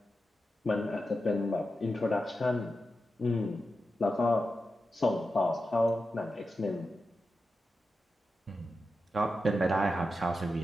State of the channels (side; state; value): both; normal; correlation 0.90